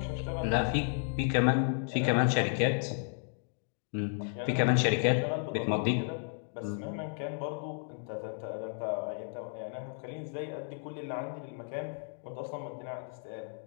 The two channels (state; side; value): silent; right; 56 dB below the other